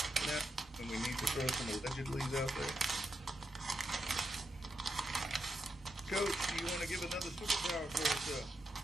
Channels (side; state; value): both; normal; correlation 0.84